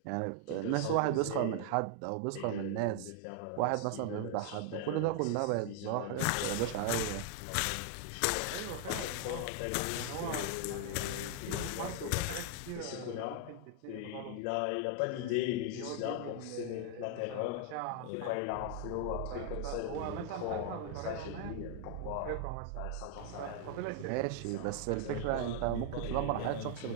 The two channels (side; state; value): both; different; correlation 0.00